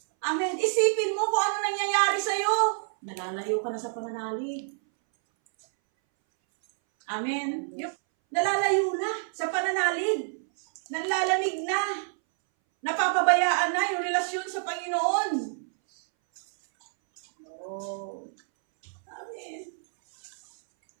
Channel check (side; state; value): left; silent; 60 dB below the other